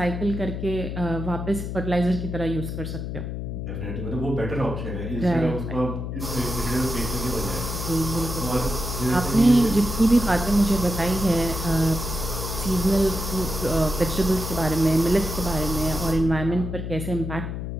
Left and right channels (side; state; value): left; noise; hum, 5 dB below the sound